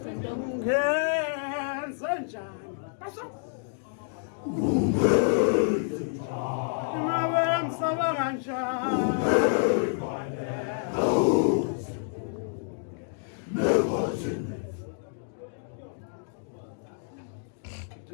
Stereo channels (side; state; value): right; silent; digital silence